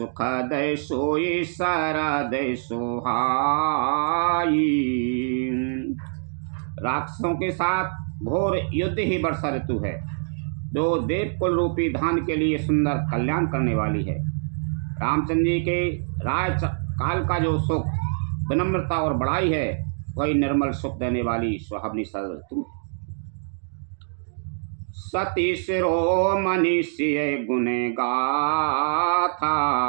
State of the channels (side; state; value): left; silent; digital silence